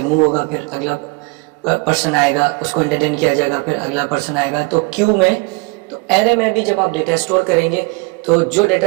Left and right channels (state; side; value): quieter; left; 27.8 dB